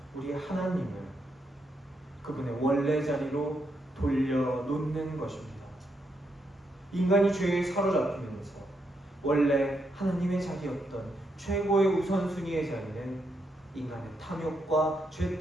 우리 하나님을 그분의 원래 자리로 돌려놓는 것입니다. 인간이 죄에 사로잡히면서 원래 하나님의 자리였던 최고의 우선순위의 자리는 인간의 탐욕과 죄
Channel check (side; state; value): both; normal; correlation 0.80